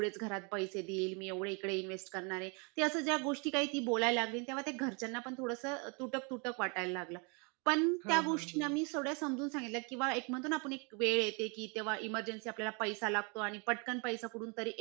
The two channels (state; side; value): quieter; left; 33.3 dB